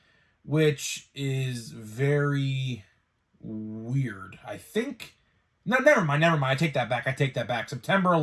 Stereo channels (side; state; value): both; identical; correlation 1.00